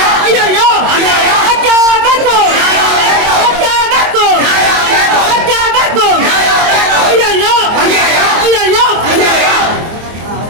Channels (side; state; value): left; late; 24 ms